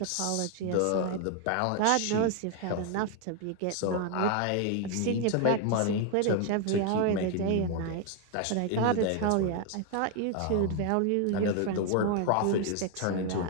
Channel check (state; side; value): different; both; correlation 0.00